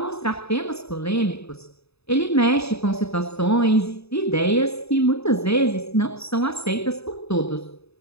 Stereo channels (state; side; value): late; right; 0.79 ms